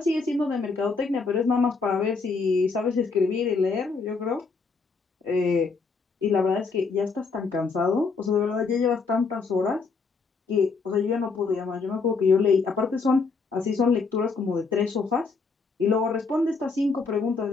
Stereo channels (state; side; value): quieter; right; 4.6 dB